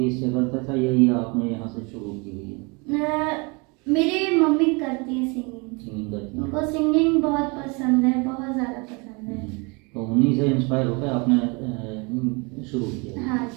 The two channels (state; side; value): quieter; left; 29.7 dB